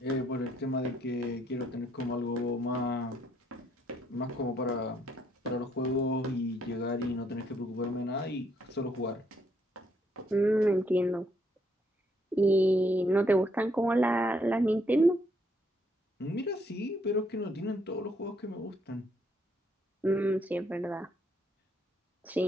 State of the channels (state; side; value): normal; both; correlation 0.71